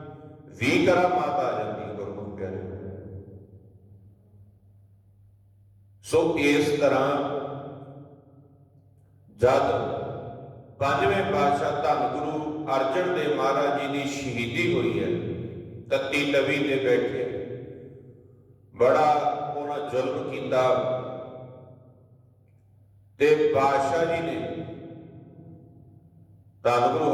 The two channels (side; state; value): both; identical; correlation 1.00